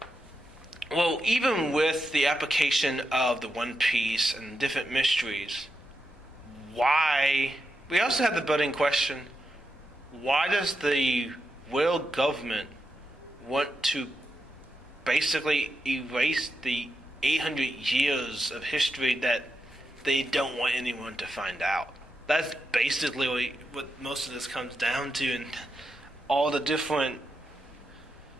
Well, even with the application of the One Piece and different mysteries, we also have the budding question, why does the world government want to basically erase the 800 years of history that they don't want anyone to find out? That's basically what most of this comes down to, and all the different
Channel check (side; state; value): both; normal; correlation 0.86